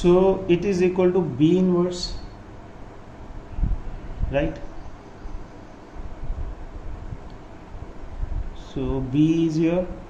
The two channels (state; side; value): identical; both; correlation 1.00